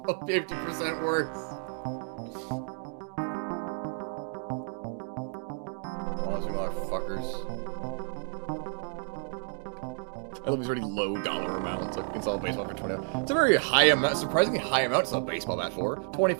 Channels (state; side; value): silent; left; 57 dB below the other